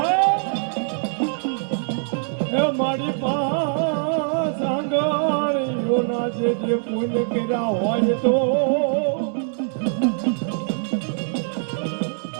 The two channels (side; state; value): left; silent; digital silence